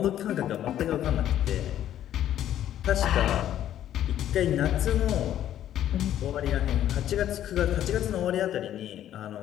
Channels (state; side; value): quieter; right; 11.5 dB